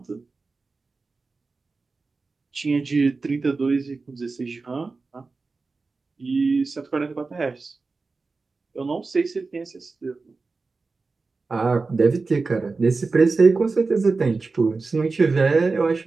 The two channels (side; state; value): left; quieter; 4.0 dB